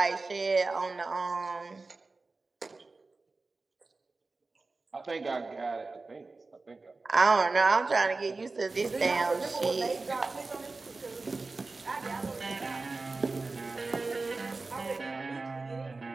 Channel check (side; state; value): left; quieter; 3.7 dB